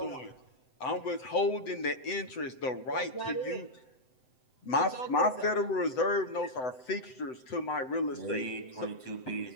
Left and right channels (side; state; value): right; late; 7.9 ms